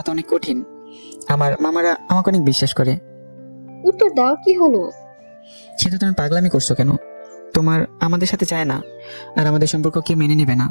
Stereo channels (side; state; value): both; inverted; correlation -1.00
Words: অনেক কঠিন। আমার মামারা আমাকে অনেক বিশ্বাস করে। উত্তর দাও, কি হলো? সেটা তুমি পাগলামি করছো কেন? তোমার আমাদের সাথে চায় না, আর আমাদের সম্পর্ক কেউ মেনে নেবে না।